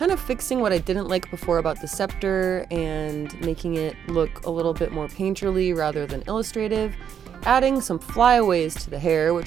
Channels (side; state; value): left; quieter; 8.4 dB